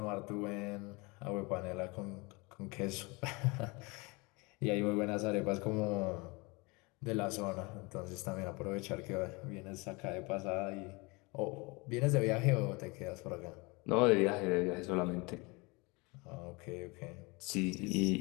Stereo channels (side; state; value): right; quieter; 26.7 dB